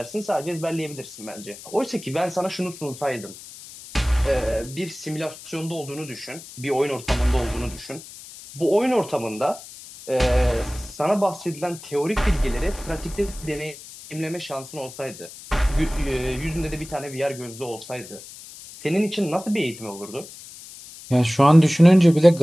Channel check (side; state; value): left; noise; hiss, 16 dB below the sound